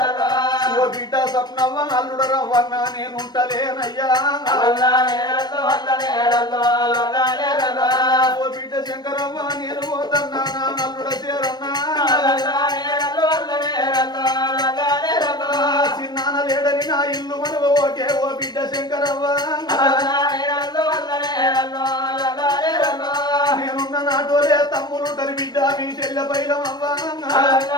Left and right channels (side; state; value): right; late; 0.20 ms